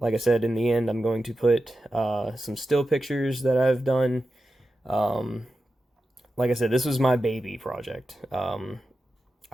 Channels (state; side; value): normal; both; correlation 0.91